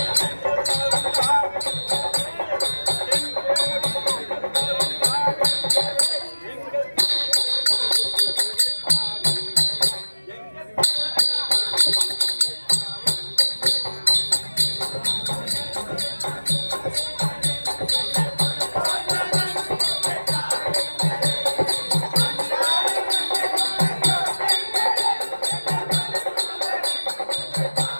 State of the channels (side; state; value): both; inverted; correlation -1.00